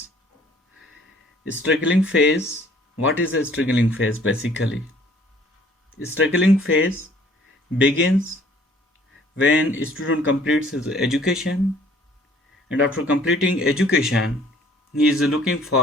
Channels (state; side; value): normal; both; correlation 0.57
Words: Struggling phase. What is a struggling phase basically? Struggling phase begins when a student completes his education, and after completing education he is looking